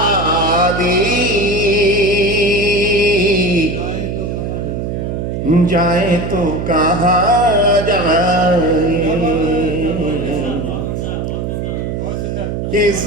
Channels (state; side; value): noise; right; hum, 3 dB below the sound